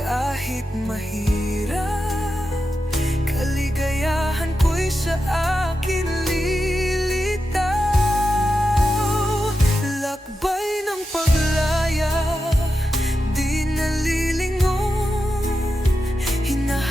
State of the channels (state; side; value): normal; both; correlation 0.89